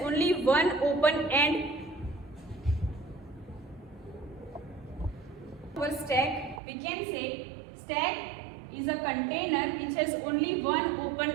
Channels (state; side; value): drops out; left; at 6.6 s